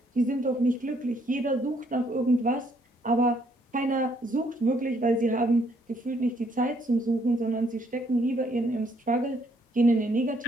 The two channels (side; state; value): both; normal; correlation 0.69